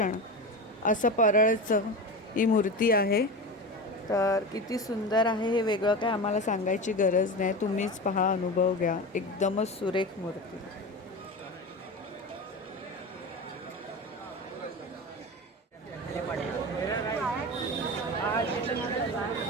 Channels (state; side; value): normal; both; correlation 0.26